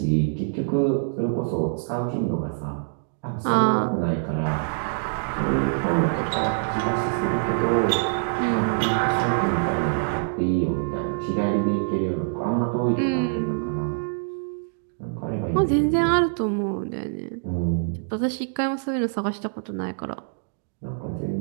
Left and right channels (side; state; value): left; silent; digital silence